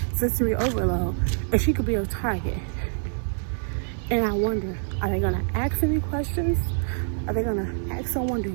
sensory overload, and she could be a target. And I wonder, are they gonna ask any questions? Are they gonna ask someone, do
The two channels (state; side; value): silent; left; digital silence